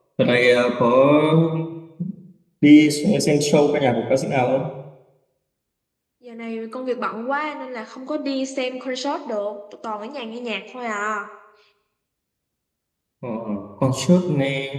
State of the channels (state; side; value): identical; both; correlation 1.00